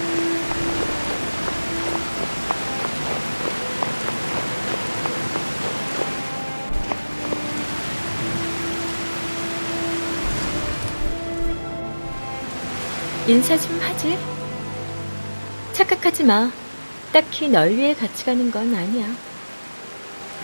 인사 좀 하지. 착각하지 마. 딱히 널 위해 같이 가는 건 아니야.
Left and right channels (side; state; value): both; inverted; correlation -1.00